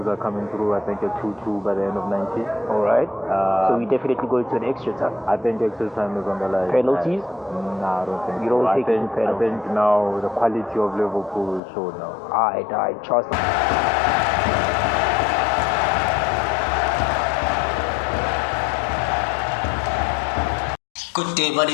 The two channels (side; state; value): right; drops out; at 11.6 s